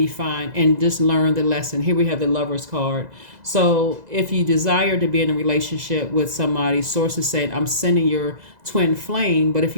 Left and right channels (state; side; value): late; left; 2.0 ms